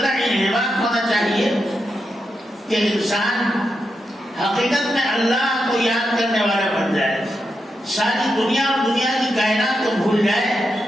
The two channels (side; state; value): both; normal; correlation 0.86